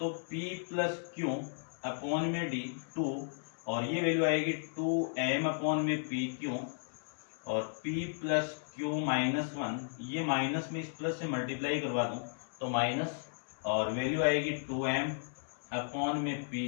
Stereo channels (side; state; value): right; silent; 55 dB below the other